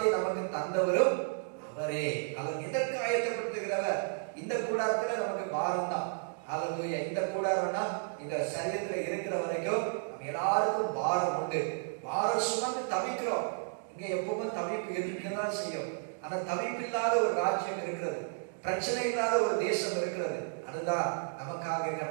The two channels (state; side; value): silent; left; digital silence